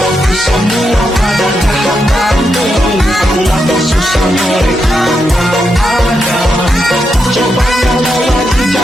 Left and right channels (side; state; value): both; normal; correlation 0.84